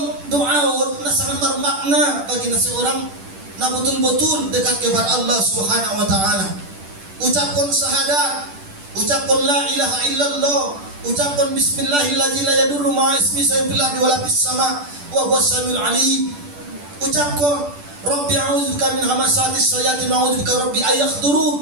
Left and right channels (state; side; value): late; left; 10 ms